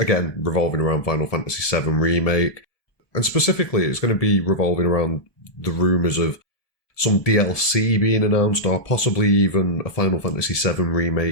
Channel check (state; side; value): late; right; 1.7 ms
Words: again, revolving around Final Fantasy VII Remake, and specifically it's going to be revolving around the rumours of some DLC being announced, or possibly even a Final Fantasy VII